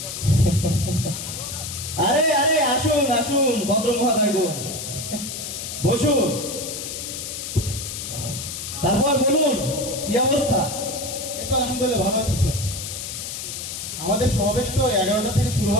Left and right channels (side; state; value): left; noise; hiss, 7 dB below the sound